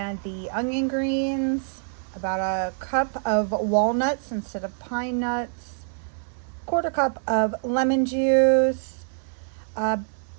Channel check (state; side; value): silent; left; digital silence